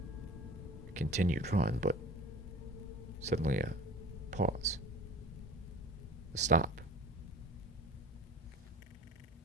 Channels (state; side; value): normal; both; correlation 0.42